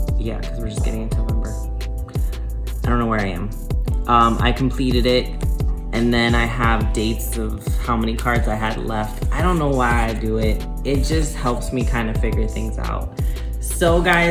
yeah, because we're just getting into November. I don't know where I am. I completed it, and then I have dates of how many cards I had left. I don't know why I do it. It just helps me kind of figure things out. So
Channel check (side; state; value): both; identical; correlation 1.00